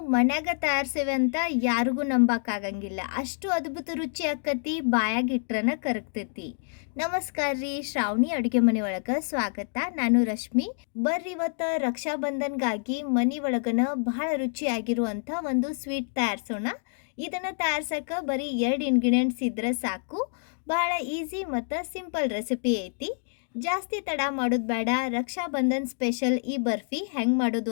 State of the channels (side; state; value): right; silent; digital silence